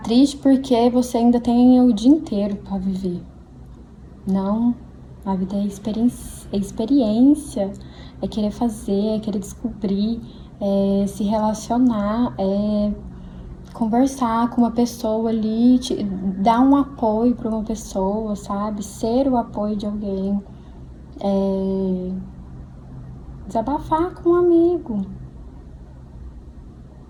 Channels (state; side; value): identical; both; correlation 1.00